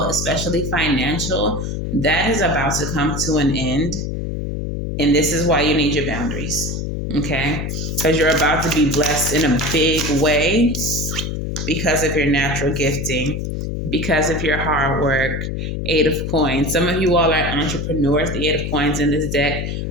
especially financial, that is about to come to an end. And this is why you need your boundaries, okay? Because you're about to be blessed in a big way because of your natural gifting, because of your hard work. 8 of Coins. Some of you all are entrepreneurs. The 8 of Coins in this deck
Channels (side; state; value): left; noise; hum, 3 dB below the sound